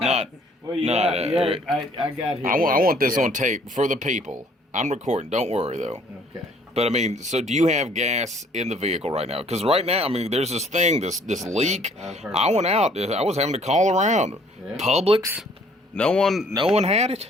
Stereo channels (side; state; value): both; normal; correlation 0.59